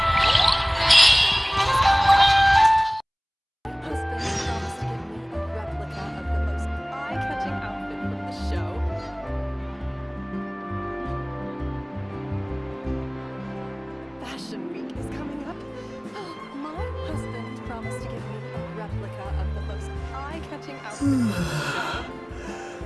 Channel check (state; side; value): identical; both; correlation 1.00